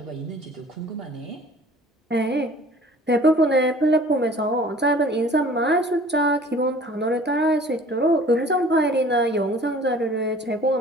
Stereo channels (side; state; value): both; normal; correlation 0.49